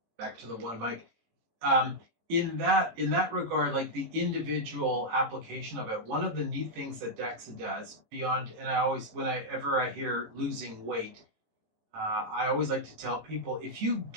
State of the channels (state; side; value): late; left; 18 ms